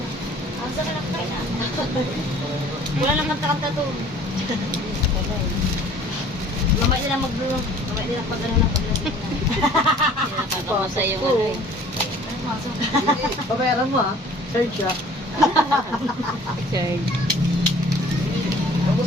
Ang sa kanak tayo na. Wala nang kanta-kanta to. Mamay nila mag-bloom. Mamay nila pag-ano na pag-lasing na. Nakakamasay yung ano eh. Pabayaran mo ha? Third siya. Third. Ako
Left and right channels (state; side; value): normal; both; correlation 0.52